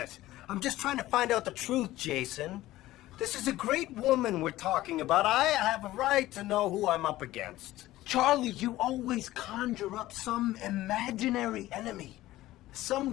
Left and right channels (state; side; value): quieter; right; 16.0 dB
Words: I'm just trying to find out the truth, Jason. This is a great woman we're talking about. I have a right to know who I'm up against. Charlie, you always conjure up some imaginary enemy.